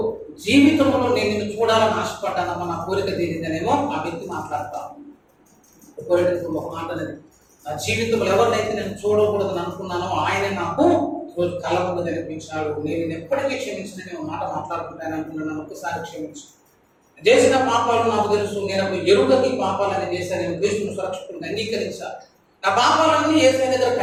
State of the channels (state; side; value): identical; both; correlation 1.00